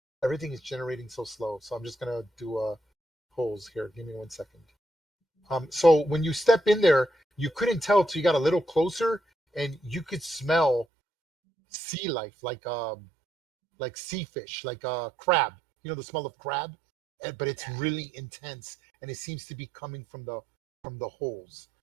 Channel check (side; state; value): left; drops out; at 10.9 s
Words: Everything is generating so slow, so I'm just gonna do holes here. Give me 1 second. So when you step in there, you couldn't tell till you got a little closer, and you could smell sea life, like sea fish, like crab. You know the smell of crab, but it's really intense, and it seems to be coming from the holes.